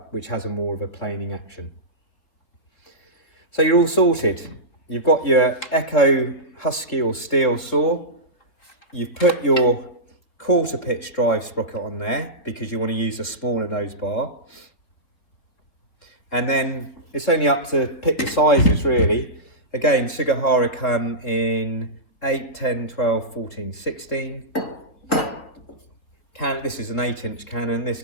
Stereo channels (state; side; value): late; right; 3.7 ms